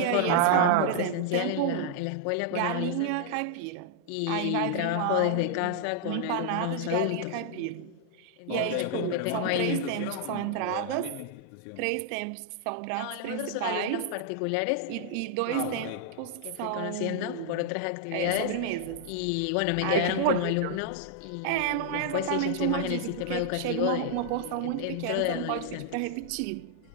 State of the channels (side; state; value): both; different; correlation -0.01